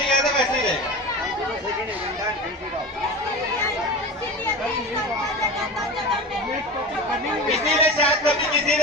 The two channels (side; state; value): both; normal; correlation 0.30